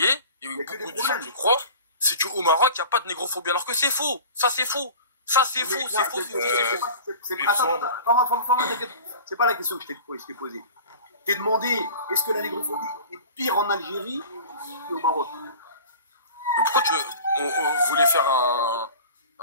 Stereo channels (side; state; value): both; inverted; correlation -0.39